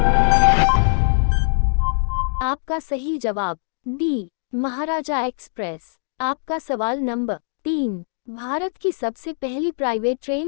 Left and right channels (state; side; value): silent; right; digital silence